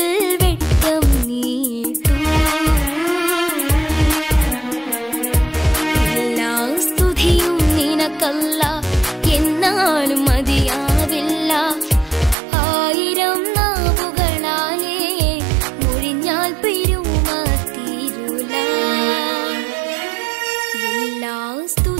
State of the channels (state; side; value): drops out; left; at 12.4 s